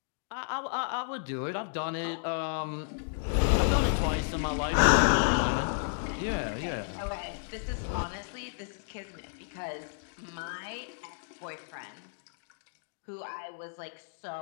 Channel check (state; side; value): silent; right; digital silence